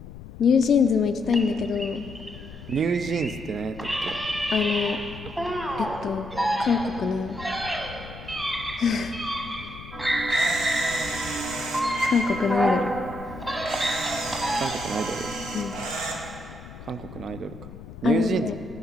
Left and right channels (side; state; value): left; noise; rumble, 15 dB below the sound